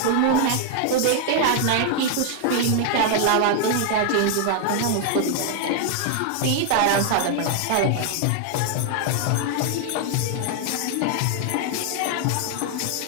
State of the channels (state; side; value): different; both; correlation 0.00